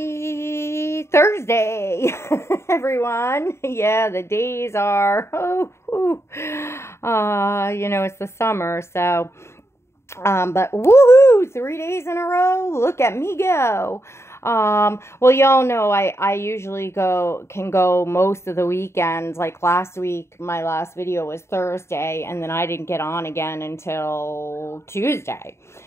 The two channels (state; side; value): late; right; 0.13 ms